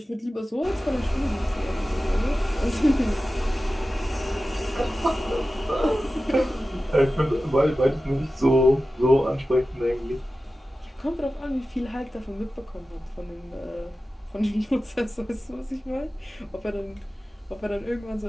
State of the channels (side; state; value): both; normal; correlation 0.94